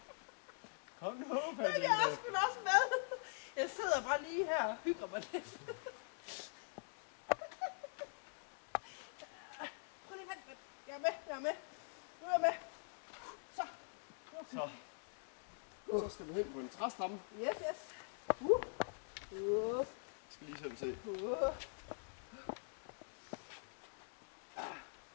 Kom nu, Jeg er sgu da også med. Jeg sidder bare lige her og hygger mig lidt. Prøv lige vent. Jeg er med. Nu er jeg med. Så. Så skal du hen på en træstamme. Yes. Jeg skal lige selv se. Så,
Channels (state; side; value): silent; right; digital silence